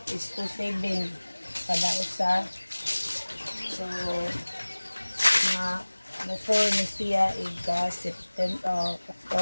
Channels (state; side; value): inverted; both; correlation -1.00